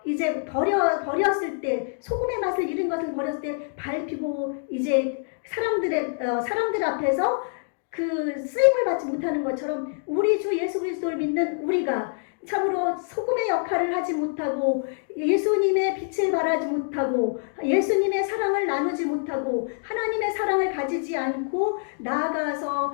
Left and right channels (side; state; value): right; silent; digital silence